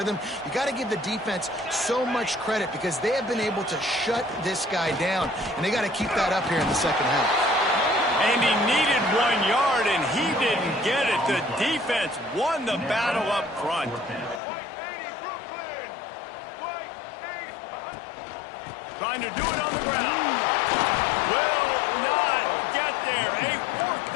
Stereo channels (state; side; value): drops out; right; at 14.4 s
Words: You got to give the defense so much credit because they have been able to shut this guy down. And they got to keep that up here in the 2nd half. And he needed 1 yard, and he didn't get it. The defense won the battle up front. Trying to do it on the ground. Will not get there. A 4th